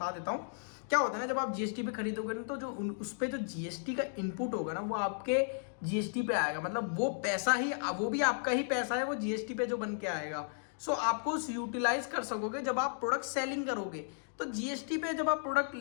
देता हूँ क्या होता है ना, जब आप जीएसटी पे खरीदोगे ना तो जो उस पे जो जीएसटी का इनपुट होगा ना वो आपके जीएसटी पे आएगा। मतलब वो पैसा ही, वो भी आपका ही पैसा है, वो जीएसटी पे जो बन के आएगा। सो आपको उस यूटिलाइज कर सकोगे जब आप प्रोडक्ट सेलिंग करोगे। तो जीएसटी पे जब आप प्रोडक्ट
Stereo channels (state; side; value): silent; right; digital silence